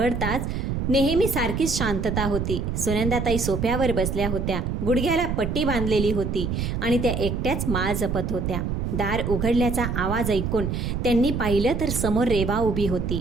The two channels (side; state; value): right; noise; rumble, 2 dB below the sound